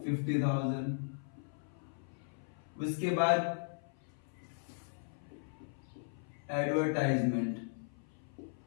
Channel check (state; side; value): silent; right; 53 dB below the other